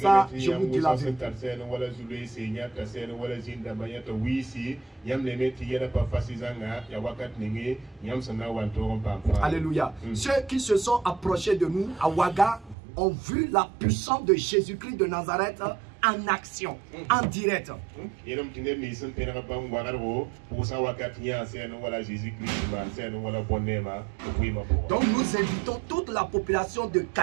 Ça, je vous dis la vérité. Alléluia. Ceux qui se sont approchés de nous à Ouaga ont vu la puissance de Jésus-Christ de Nazareth en action, en direct. Donc nous invitons toute la population de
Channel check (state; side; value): drops out; left; at 12.8 s